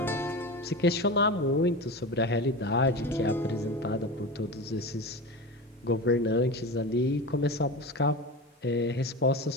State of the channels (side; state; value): both; normal; correlation 0.27